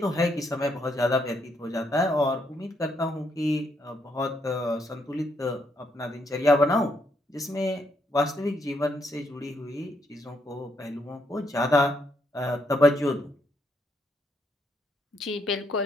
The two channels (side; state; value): both; normal; correlation 0.75